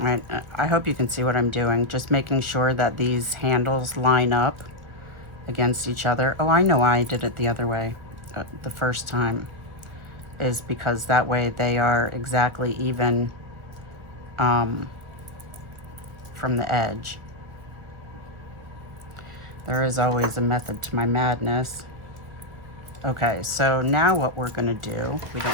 right, I hope you can see what I'm doing. Just making sure that these handles line up against each other. Oh, I know why I did it the other way the first time, is because that way they are exactly even from the edge. There is always a method to my madness. Okay, so now what we're gonna do, we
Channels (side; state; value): left; late; 1.5 ms